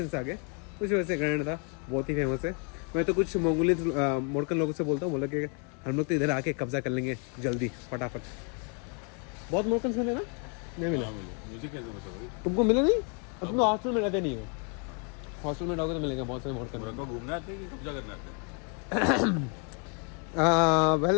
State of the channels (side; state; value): right; quieter; 38.4 dB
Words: आ गए, उस वजह से ग्रेनाडा बहुत ही फेमस है। मैं तो कुछ मोरकन लोगों से बोलता हूँ, बोला कि हम लोग तो इधर आके कब्जा कर लेंगे जल्दी फटाफट। बहुत मोरकन मिले ना? नहीं मिले। मुझे कैसे पता भाई? तुमको मिले नहीं? अब तुम हॉस्टल में रहते नहीं हो। हॉस्टल में रहोगे तो मिलेंगे बहुत सारे मोरकन। मोरक्को घूमने आते हैं कि कब्जा करने आते हैं?